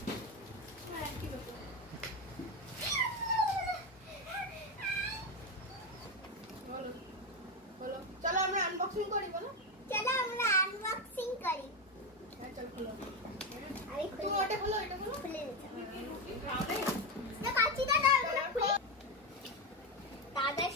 চলো আমরা আনবক্সিং করি, বলো। চলো আমরা আনবক্সিং করি। চল খোলো। আমি তুমি ওটা খোলো, এটা খোলো। খুলে দিচ্ছি না, কাঁচি দাদা ওগুলো খুলে। দাদা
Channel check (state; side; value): normal; both; correlation 0.12